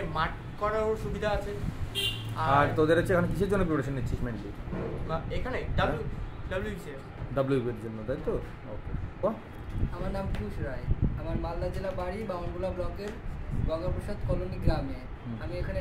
মাঠ করারও সুবিধা আছে। আর তোদের হচ্ছে এখানে কিসের জন্য প্রিপারেশন নিচ্ছিস মেনলি? এখানে ডাব্লিউবির জন্য, তাই তো? ওকে। আমার নাম পিয়ুষ রায়, আমার মালদা জেলা বাড়ি বামনগোলা ব্লকের গঙ্গাপ্রসাদ কলোনি গ্রামে। আমি এখানে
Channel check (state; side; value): identical; both; correlation 1.00